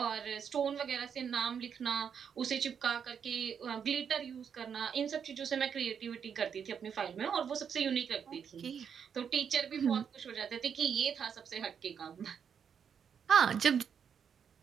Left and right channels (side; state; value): left; quieter; 7.4 dB